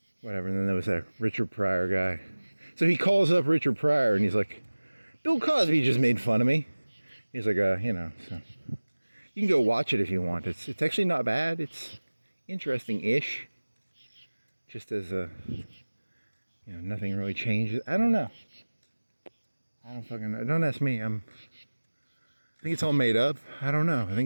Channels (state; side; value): inverted; both; correlation -1.00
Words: whatever. And then there was that Richard Pryor guy. So he calls up Richard Pryor and he's like, Bill Cosby just made fun of me. He's like, you know, so you can go watch it if you want. It's actually not bad. It's interesting-ish. Just as you know, nothing really changes. I don't know. I don't fucking know. Don't ask me. I think it's all made up. I don't know. I